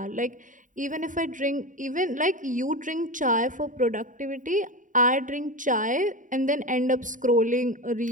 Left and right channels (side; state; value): left; late; 0.38 ms